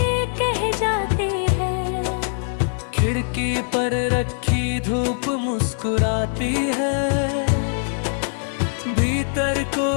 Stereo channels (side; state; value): right; silent; digital silence